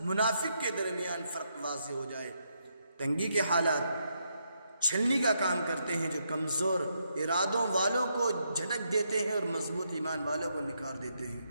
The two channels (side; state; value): both; inverted; correlation -0.79